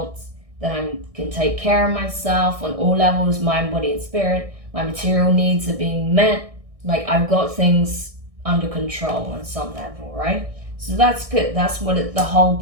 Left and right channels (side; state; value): left; late; 1.6 ms